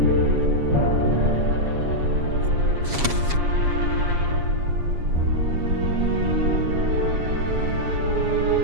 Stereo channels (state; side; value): late; left; 7.2 ms